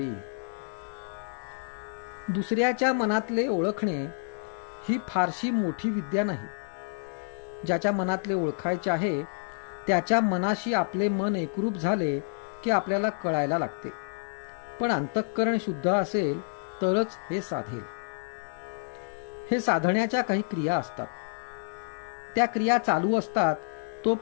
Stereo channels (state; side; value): silent; right; digital silence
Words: दुसऱ्याच्या मनातले ओळखणे ही फारशी मोठी विद्या नाही. ज्याच्या मनातले ओळखायचे आहे त्याच्या मनाशी आपले मन एकरूप झाले की आपल्याला कळायला लागते. पण अंतःकरण शुद्ध असेल तरच हे साधेल. हे साधण्याच्या काही क्रिया असतात. त्या क्रिया चालू असतात